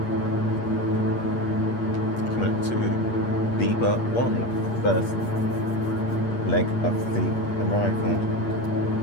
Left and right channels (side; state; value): right; late; 8.5 ms